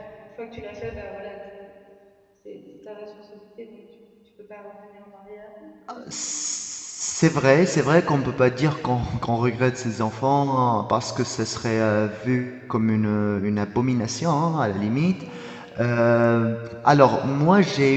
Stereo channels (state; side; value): identical; both; correlation 1.00